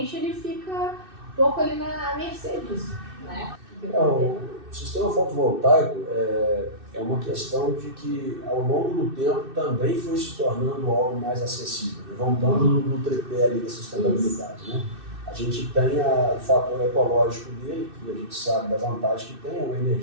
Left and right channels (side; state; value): left; late; 2.6 ms